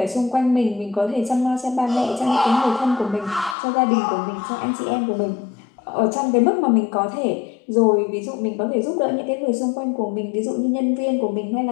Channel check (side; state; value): right; drops out; at 3.6 s